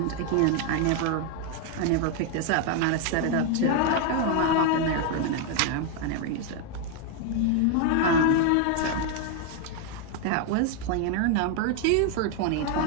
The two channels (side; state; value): both; different; correlation 0.01